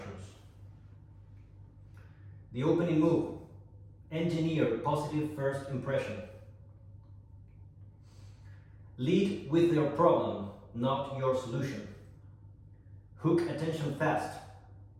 The opening move. Engineer positive first impression. Lead with your problem, not your solution. Hook attention fast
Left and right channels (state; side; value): identical; both; correlation 1.00